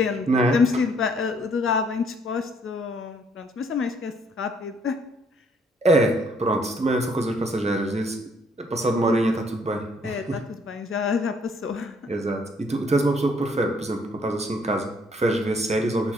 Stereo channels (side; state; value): both; normal; correlation 0.65